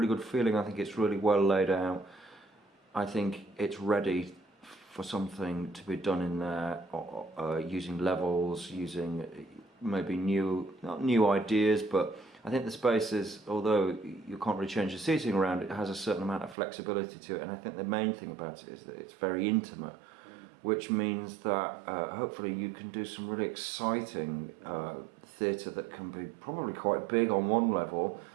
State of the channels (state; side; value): drops out; left; at 16.6 s